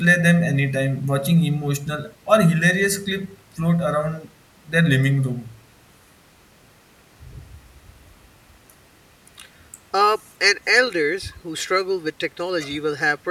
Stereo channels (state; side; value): identical; both; correlation 1.00